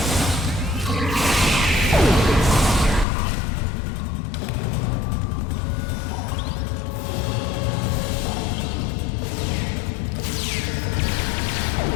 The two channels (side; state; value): right; drops out; at 3.1 s